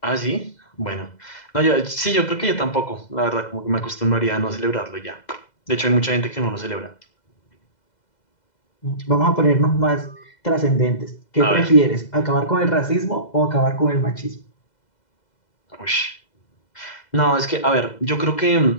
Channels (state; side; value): late; right; 2.0 ms